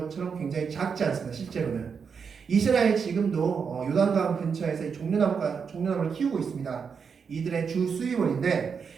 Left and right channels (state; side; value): quieter; left; 6.1 dB